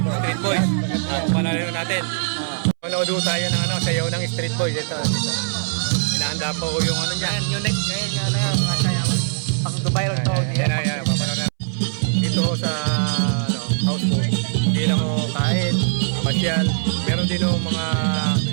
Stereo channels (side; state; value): left; silent; 65 dB below the other